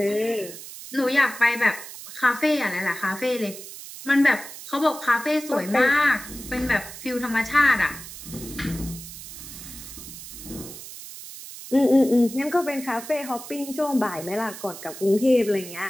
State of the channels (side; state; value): right; noise; hiss, 13 dB below the sound